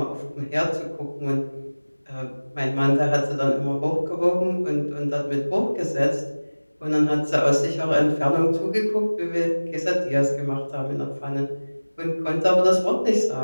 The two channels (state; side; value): inverted; both; correlation -1.00